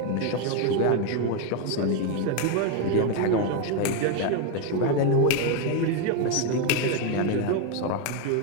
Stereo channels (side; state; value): both; different; correlation 0.02